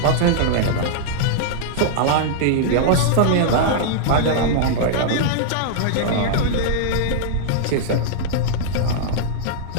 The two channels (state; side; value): different; both; correlation -0.02